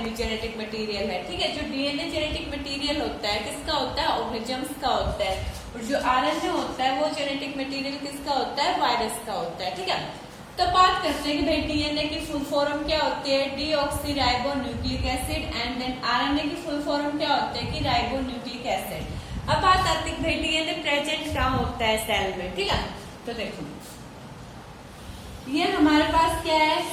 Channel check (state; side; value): identical; both; correlation 1.00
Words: जेनेटिक मटेरियल है। ठीक है, जो डीएनए जेनेटिक मटेरियल होता है किसका होता है? ऑर्गेनिजम्स का होता है, और जो आरएनए होता है वो जेनेटिक मटेरियल किसका होता है? वायरस का होता है। ठीक है, तो बात करते हैं कि भाई डीएनए की फुल फॉर्म क्या होती है? Deoxyribo nucleic acid, and then RNA की फुल फॉर्म क्या होती है? कि राइबो न्यूक्लिक एसिड। अब बात आती है भाई डीएनए प्रेजेंट कहाँ होता है? सेल में। ठीक है, तो देखो ये हमारे पास क्या है?